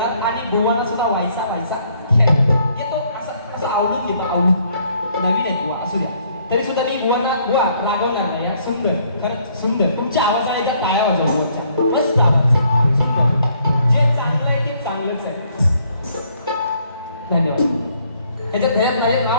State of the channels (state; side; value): inverted; both; correlation -0.66